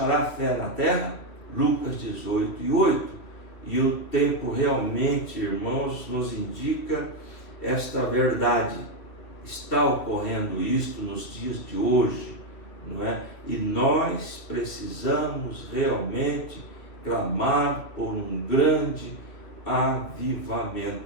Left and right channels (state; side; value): late; right; 2.5 ms